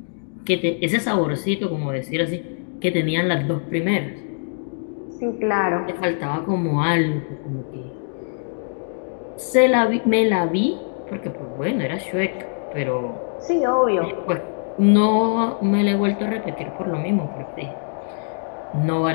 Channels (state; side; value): silent; right; digital silence